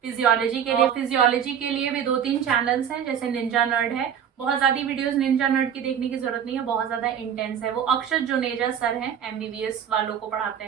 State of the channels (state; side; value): quieter; left; 8.6 dB